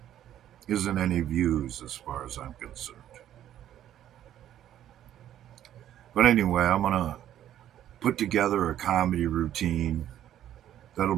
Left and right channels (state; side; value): quieter; left; 11.4 dB